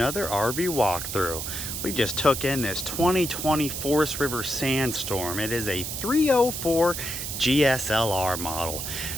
RV walkthrough. We just took in this 2020 Forest River Sandstorm. It is a 304 GSLR model.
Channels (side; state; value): right; noise; hiss, 5 dB below the sound